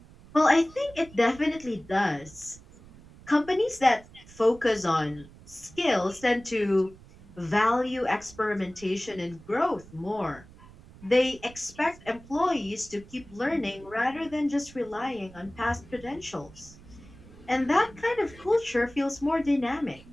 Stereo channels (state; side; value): noise; right; rumble, 21 dB below the sound